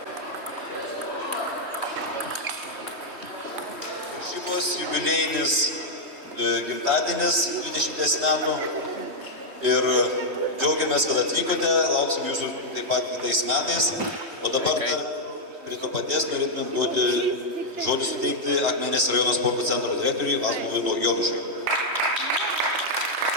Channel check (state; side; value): late; left; 3.1 ms